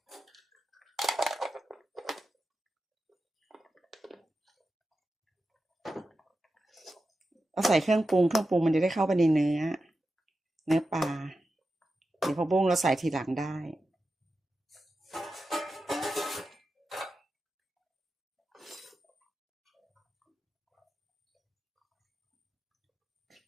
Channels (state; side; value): normal; both; correlation 0.91